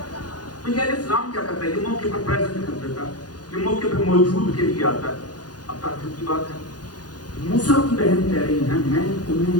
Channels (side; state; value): right; late; 0.69 ms